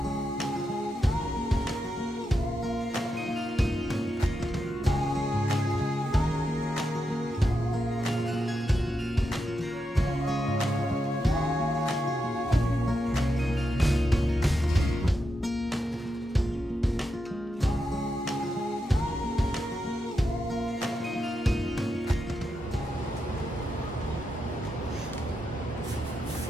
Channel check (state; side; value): normal; both; correlation 0.86